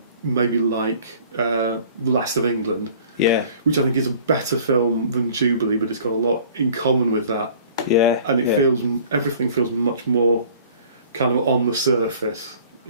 maybe like Last of England, yeah, which I think is a better film than Jubilee, but it's got a lot in common with that. yeah, And it yeah. everything feels much more kind of on the surface.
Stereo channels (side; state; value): both; inverted; correlation -0.50